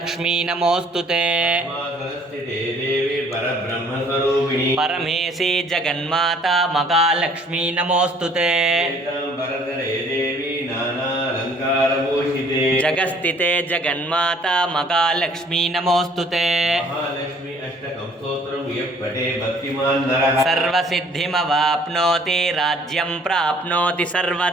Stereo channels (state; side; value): normal; both; correlation 0.57